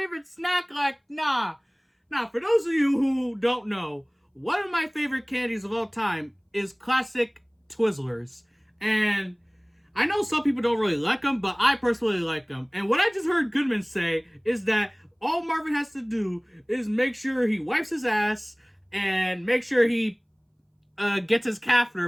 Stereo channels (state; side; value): identical; both; correlation 1.00